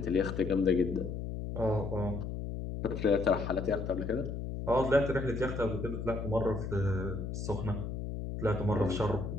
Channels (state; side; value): noise; left; hum, 5 dB below the sound